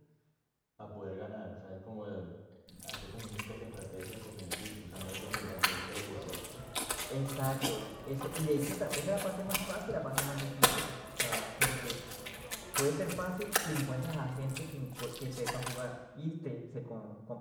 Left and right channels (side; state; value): both; identical; correlation 1.00